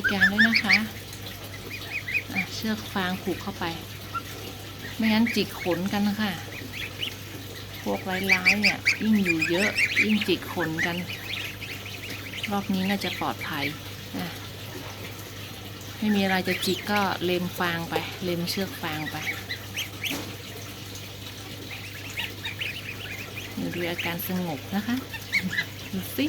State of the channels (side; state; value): both; identical; correlation 1.00